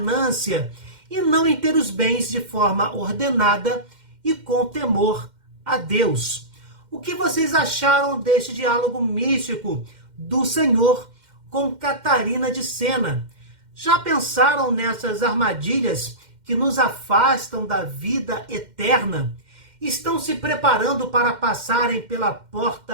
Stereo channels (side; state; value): left; late; 2.1 ms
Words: e não em ter os bens de forma ordenada e com temor a Deus. O que vocês acharam deste diálogo místico do Senhor com Catarina de Sena? Já pensaram nessas armadilhas que nos afastam da vida eterna? Estão se preparando para passarem pela